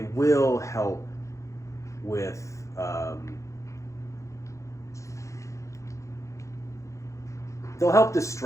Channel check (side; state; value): right; late; 0.15 ms